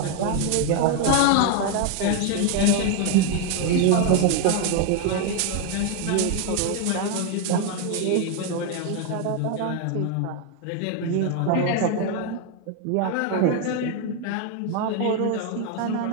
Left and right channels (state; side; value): different; both; correlation 0.01